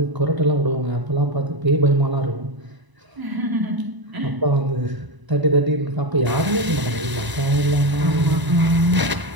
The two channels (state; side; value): late; left; 1.0 ms